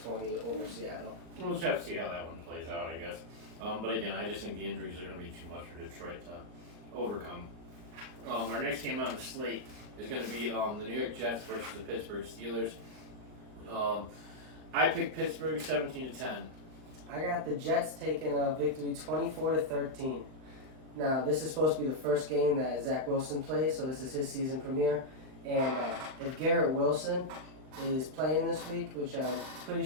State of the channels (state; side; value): late; left; 39 ms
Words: over Seattle. We'll just have to see how that one plays out, I guess. But again, I just think the injuries are going to be too much for Detroit to overcome. Our next game on the slate is going to be the New York Jets versus the Pittsburgh Steelers. I picked Pittsburgh 17-10. I got the Jets taking a victory 24-13. Now, this is supposed to be the first game that Zach Wilson plays, so this is his season premiere. And if Garrett Wilson is playing this week, which I'm pretty